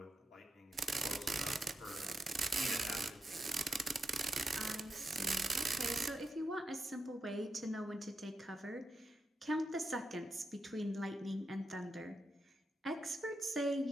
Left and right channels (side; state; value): both; normal; correlation 0.87